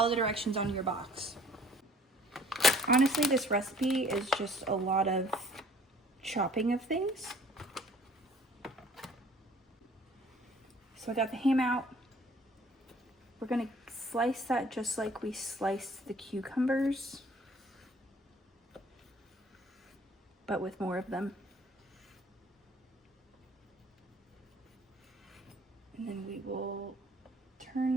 the directions on your box. Honestly, this recipe is just a lot of chopping of things. So I got the ham out. We're gonna slice that just like we sliced the cucumbers, but with more of them. And then we will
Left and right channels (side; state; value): both; normal; correlation 0.54